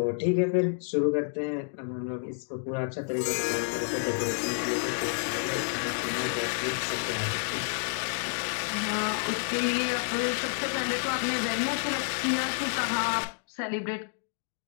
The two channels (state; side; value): silent; right; digital silence